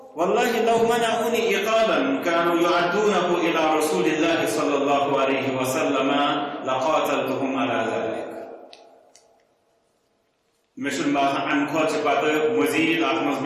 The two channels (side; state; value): both; identical; correlation 1.00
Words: والله لو منعوني إقالا كانوا يعدونه إلى رسول الله صلى الله عليه وسلم لقاتلتهم على ذلك مثل ما عن خود بعد مزید آتمز